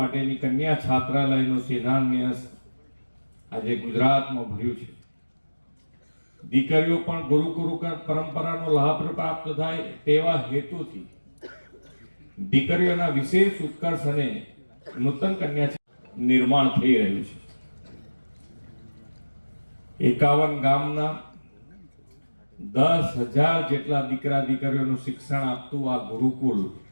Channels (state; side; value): inverted; both; correlation -1.00